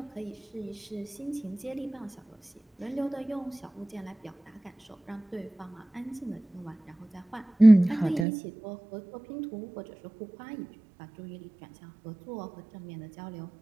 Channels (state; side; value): drops out; left; at 8.2 s